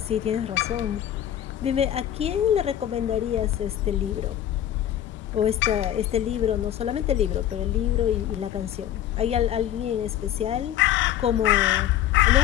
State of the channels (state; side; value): quieter; right; 11.4 dB